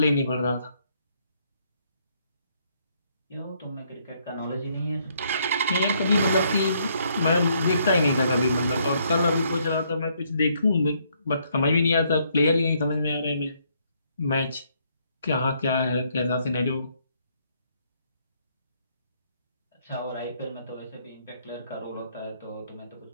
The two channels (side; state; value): both; inverted; correlation -0.70